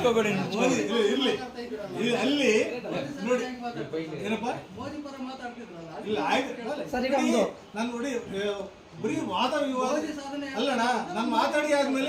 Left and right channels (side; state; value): both; identical; correlation 1.00